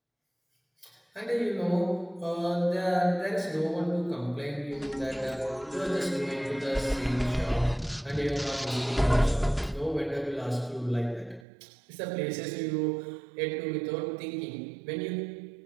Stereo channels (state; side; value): drops out; left; at 11.5 s